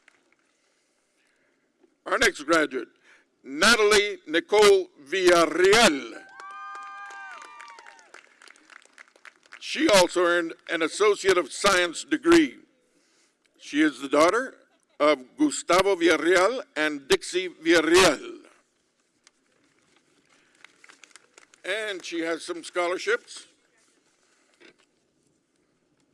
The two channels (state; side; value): identical; both; correlation 1.00